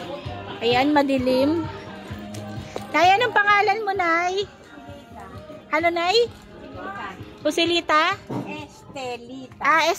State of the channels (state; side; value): identical; both; correlation 1.00